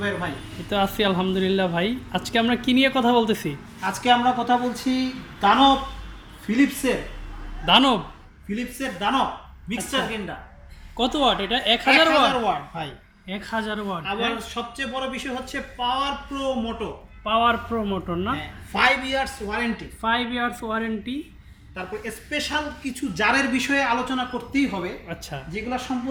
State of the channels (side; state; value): both; identical; correlation 1.00